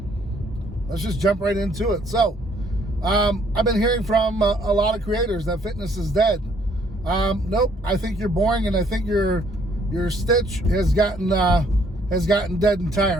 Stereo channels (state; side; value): normal; both; correlation 0.65